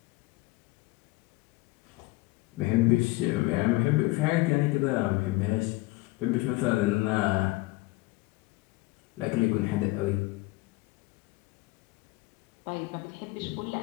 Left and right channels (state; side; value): quieter; right; 21.3 dB